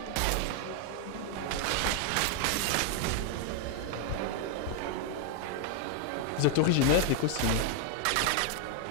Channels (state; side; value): different; both; correlation 0.00